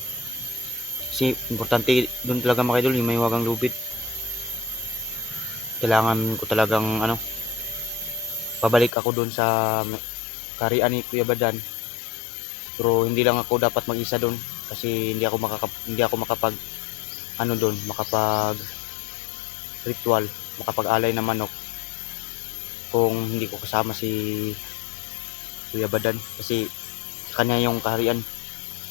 Kasi importante doon talaga mga idol, yung may wagang lubid. Kailangan ko talagang ano, pabalik ako doon sa karian ni Kuya Badan. Pero hindi lang ako dapat mag-isa doon kasi hindi ako makapag ano doon, makapag ritual, makapag-alay ng manok kung hindi ko kasama si Kuya Badan, kasi sa kanya yung kaharian,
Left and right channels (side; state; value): right; drops out; at 8.9 s